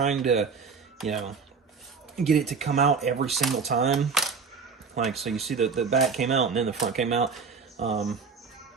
to, get it to come out every single time. Like, so you see the back came out and then the front came out.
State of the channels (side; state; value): left; quieter; 5.3 dB